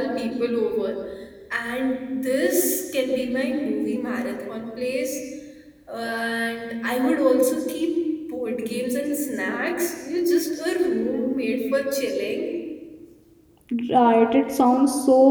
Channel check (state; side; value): identical; both; correlation 1.00